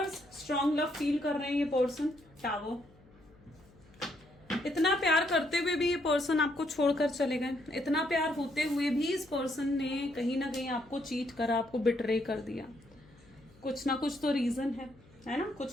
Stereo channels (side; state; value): left; noise; hum, 27 dB below the sound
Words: स्ट्रॉन्ग लव फील कर रहे हैं ये पर्सन, टावर, इतना प्यार करते हुए भी ये पर्सन आपको छोड़कर चले गए, इतना प्यार होते हुए भी इस पर्सन ने कहीं ना कहीं आपको चीट करा, आपको बिट्रे कर दिया, कुछ ना कुछ तो रीजन है ना,